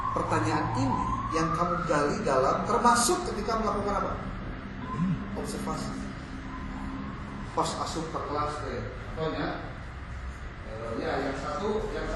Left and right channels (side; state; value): both; identical; correlation 1.00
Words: Pertanyaan ini yang kamu gali dalam termasuk ketika melakukan apa? Observasi. Pas asup ke kelas contohnya, ya yang satu